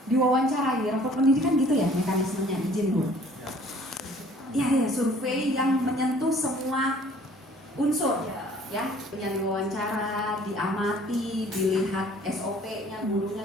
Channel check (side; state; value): both; normal; correlation 0.54